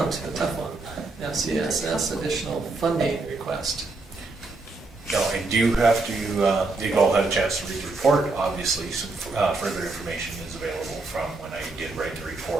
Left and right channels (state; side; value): quieter; left; 3.5 dB